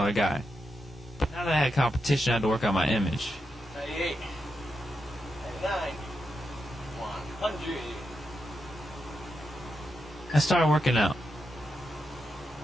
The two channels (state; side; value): normal; both; correlation 0.85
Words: guy. But now that I had competition, I had to work on my image. 98, 99, 100. I started working out.